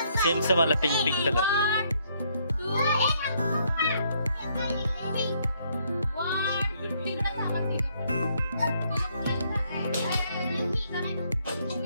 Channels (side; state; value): both; inverted; correlation -0.70